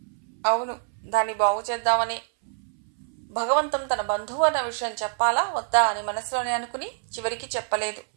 అవును, దాన్ని బాగు చేద్దామని. భగవంతం తన బంధువు అన్న విషయం చెప్పాలా వద్దా అని మనసులోనే అనుకుని చివరికి చెప్పలేదు.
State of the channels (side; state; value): left; silent; 61 dB below the other